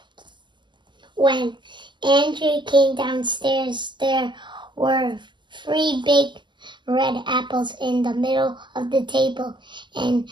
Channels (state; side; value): late; left; 0.22 ms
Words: When Andrew came downstairs, there were 3 big red apples in the middle of the table, and